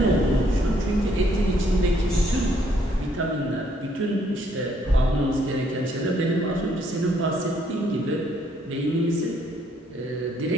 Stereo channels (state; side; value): normal; both; correlation 0.68